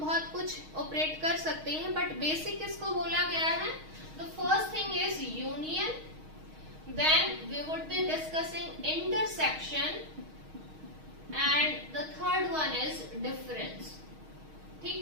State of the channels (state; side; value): late; left; 6.4 ms